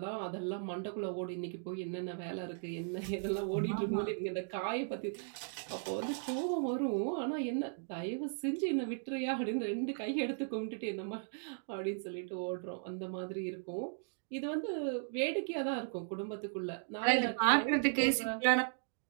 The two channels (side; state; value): left; silent; digital silence